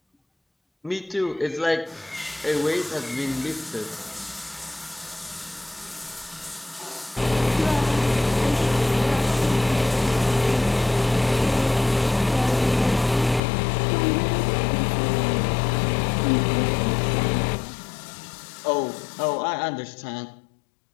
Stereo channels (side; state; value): right; drops out; at 13.4 s